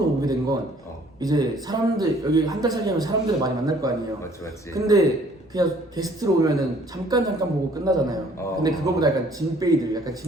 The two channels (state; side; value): normal; both; correlation 0.58